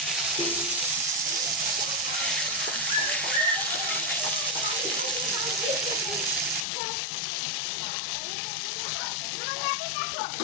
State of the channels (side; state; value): right; drops out; at 6.7 s